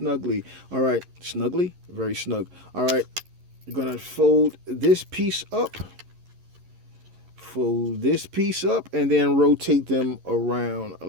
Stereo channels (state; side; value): late; left; 11 ms